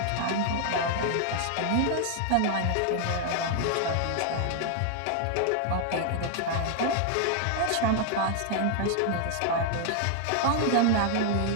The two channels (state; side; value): different; both; correlation 0.00